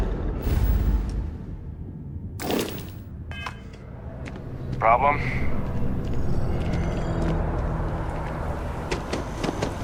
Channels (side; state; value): both; identical; correlation 1.00